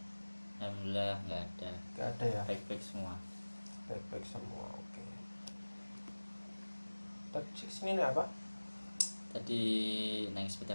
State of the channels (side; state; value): both; inverted; correlation -1.00